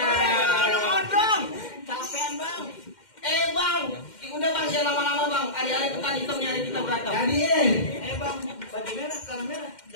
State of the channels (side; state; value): right; late; 2.1 ms